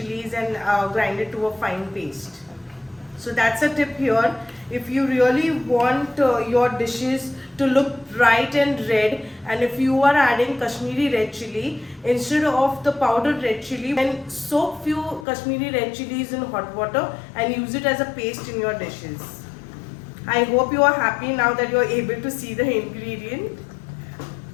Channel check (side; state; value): right; drops out; at 15.2 s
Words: and grind it to a fine paste. So that's a tip here. If you really want your dishes to look bright and red, and if you are adding Kashmiri red chili instead of the powdered red chili, then soak few Kashmiri red chilies in hot water and use it as a paste in your dishes. I hope you are happy now that you are able to see the ingredient.